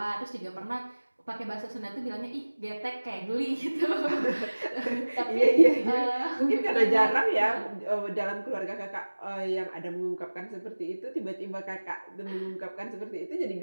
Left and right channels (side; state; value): both; inverted; correlation -1.00